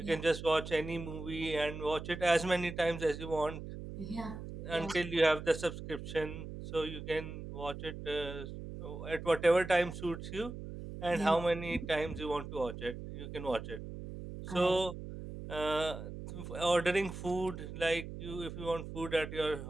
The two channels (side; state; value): right; noise; hum, 9 dB below the sound